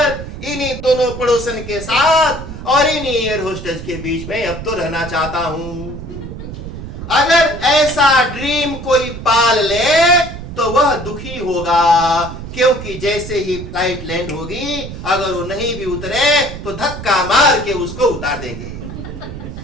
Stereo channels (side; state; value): right; noise; rumble, 10 dB below the sound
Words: इन्हीं दोनों पड़ोसन के साथ और इन्हीं एयर होस्टेज के बीच में अब तो रहना चाहता हूं। अगर ऐसा ड्रीम कोई पाल ले तो वह दुखी होगा, क्योंकि जैसे ही फ्लाइट लैंड होगी, अगर वो नहीं भी उतरे तो धक्का मार के उसको उतार देंगे।